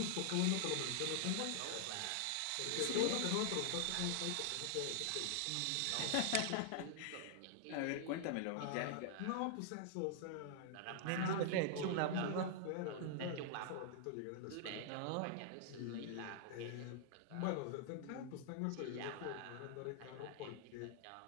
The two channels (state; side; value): different; both; correlation -0.01